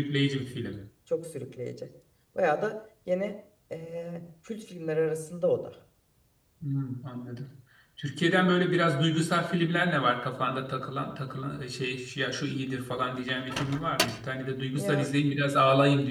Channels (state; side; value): identical; both; correlation 1.00